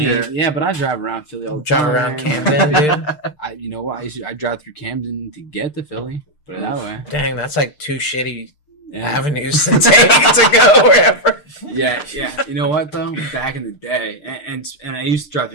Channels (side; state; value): right; late; 6.6 ms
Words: Yeah, but I drive around Philly all the Drive time. around Camden, dude. You know what? I drive through Camden to get to Philly. Put it that way. Dang, that's like two shitty Yeah. avenues to take to go wherever. Yeah. You know what though? Back in the day, and I used to drive